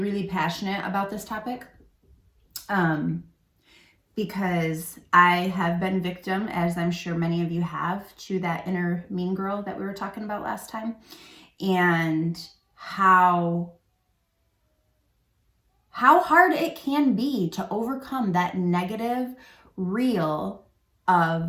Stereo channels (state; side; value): identical; both; correlation 1.00